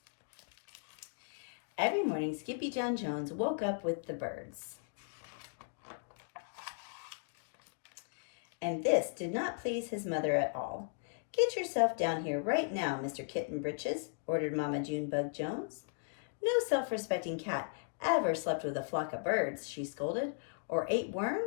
Every morning, Skippyjon Jones woke up with the birds. And this did not please his mother at all. "Get yourself down here right now, Mr. Kitten Britches," ordered Mama Junebug Jones. "No self-respecting cat ever slept with a flock of birds," she scolded, "or ate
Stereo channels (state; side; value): silent; right; digital silence